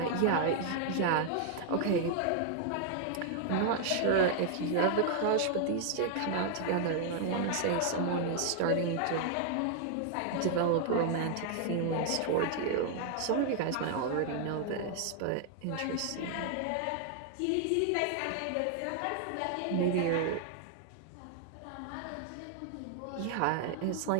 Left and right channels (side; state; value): both; different; correlation 0.00